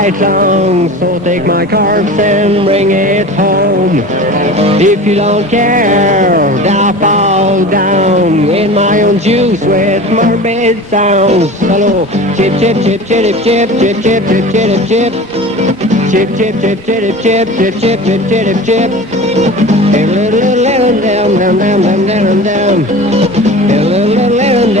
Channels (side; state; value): both; normal; correlation 0.36